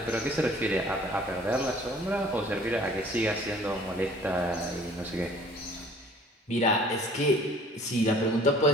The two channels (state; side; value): normal; both; correlation 0.52